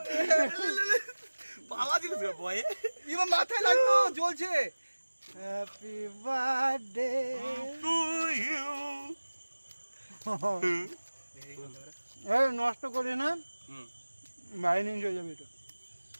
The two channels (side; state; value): both; inverted; correlation -1.00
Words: পালা দিল বয়ে এবার মাথায় লাগতো জ্বলছে। Happy birthday to you. এই নষ্ট করি না, বাইরে নিয়ে চলে যাবে এটা